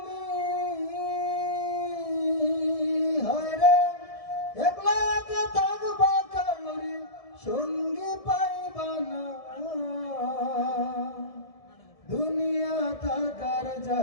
হায়রে একলা একা থাকবা, কাউরে সঙ্গী পাইবা না। দুনিয়া থাকার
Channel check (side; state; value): right; late; 1.7 ms